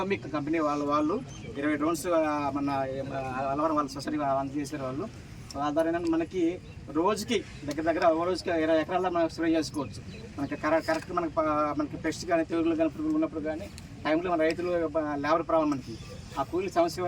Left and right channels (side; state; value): both; identical; correlation 1.00